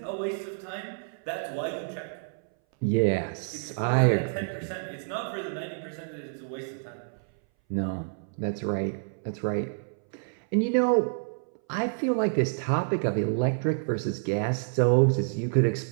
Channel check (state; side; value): silent; left; 59 dB below the other